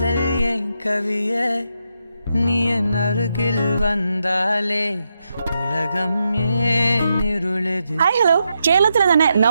என் கவியே நீ என் அருகில் வந்தாலே ഉലകം ഏനിരുളത്. ഹായ് ഹലോ, കേരളത്തിലെ തന്നെ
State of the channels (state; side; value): inverted; both; correlation -0.84